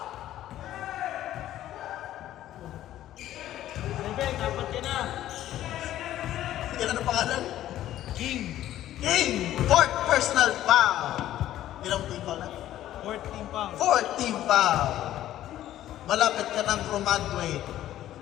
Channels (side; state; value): right; quieter; 13.0 dB